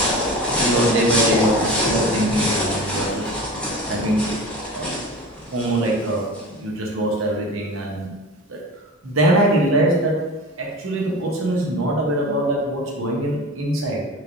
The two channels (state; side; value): normal; both; correlation 0.33